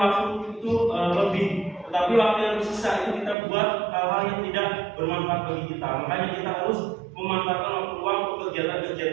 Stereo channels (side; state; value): left; drops out; at 3.4 s